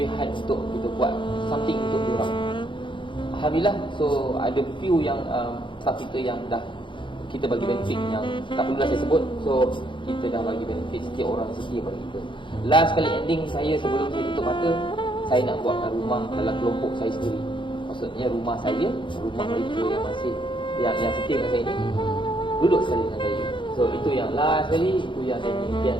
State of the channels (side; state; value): right; late; 0.24 ms